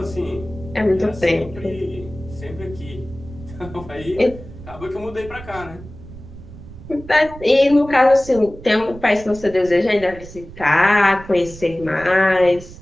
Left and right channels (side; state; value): right; noise; rumble, 16 dB below the sound